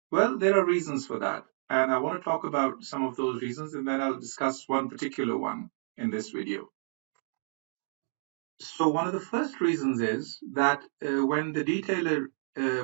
Well, there are reasons for that, and I want to talk about some of those reasons, and then I'll discuss one particular one in this video. So one of the first reasons is that when the detailer,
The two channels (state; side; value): silent; left; digital silence